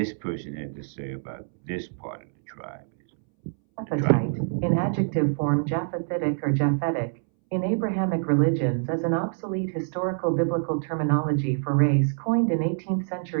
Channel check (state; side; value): silent; left; 61 dB below the other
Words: person had to say about this part of the tribism. Japhethite, in adjective form Japhethitic or Japhetic, in Abrahamic religions as an obsolete historical biblical terminology for race coined in 18th